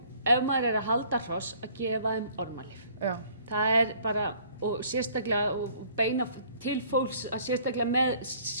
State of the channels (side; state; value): both; inverted; correlation -0.57